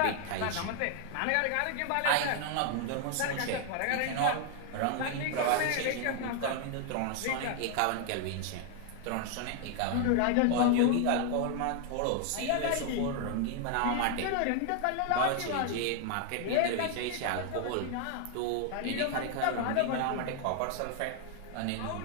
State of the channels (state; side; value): different; both; correlation 0.00